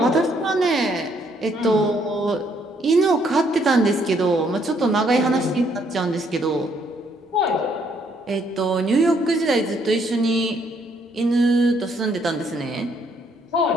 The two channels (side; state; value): both; normal; correlation 0.69